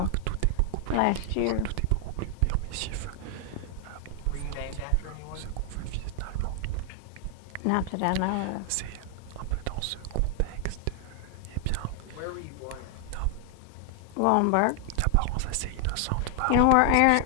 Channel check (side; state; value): both; different; correlation 0.00